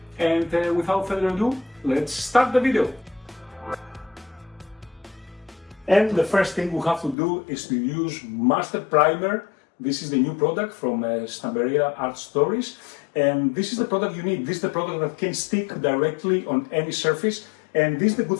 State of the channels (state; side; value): drops out; right; at 7.2 s